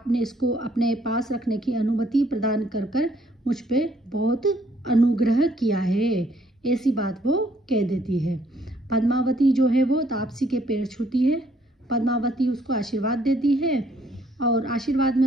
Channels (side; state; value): both; normal; correlation 0.65